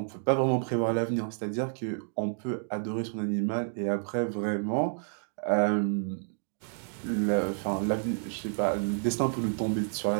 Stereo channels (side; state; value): left; silent; digital silence